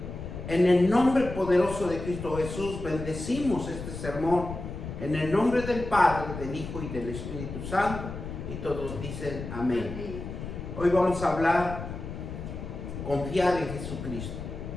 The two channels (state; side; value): noise; left; rumble, 8 dB below the sound